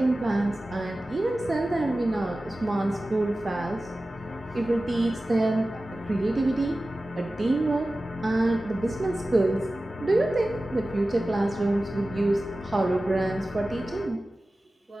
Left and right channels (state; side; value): normal; both; correlation 0.96